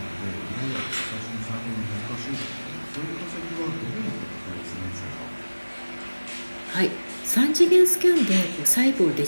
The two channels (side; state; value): both; inverted; correlation -1.00